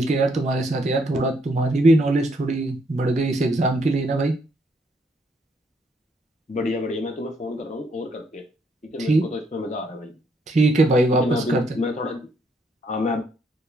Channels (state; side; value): normal; both; correlation 0.72